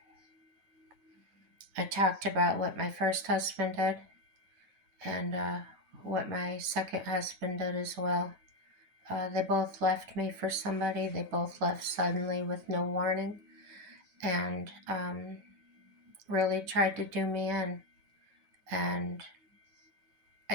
I talked about what my first husband did, and what my second husband did as well. They both left me for somebody. They both left suddenly with no warning, and really tried to do me in. And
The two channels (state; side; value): late; left; 9.3 ms